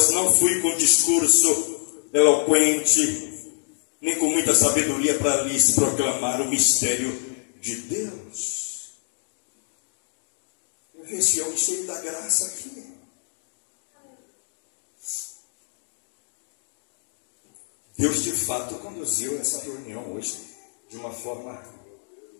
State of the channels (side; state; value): right; silent; digital silence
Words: não fui com discurso eloquente, nem com muita sabedoria para lhes proclamar o mistério de Deus. Eu vi esse homem cheio da graça aqui. Deus de fato conduziu essa reunião hoje de uma forma